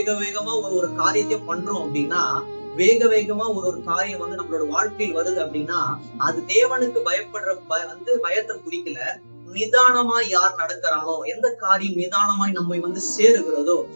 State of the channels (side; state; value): both; inverted; correlation -1.00